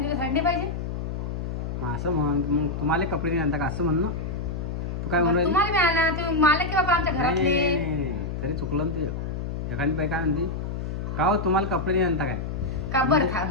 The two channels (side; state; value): left; noise; hum, 4 dB below the sound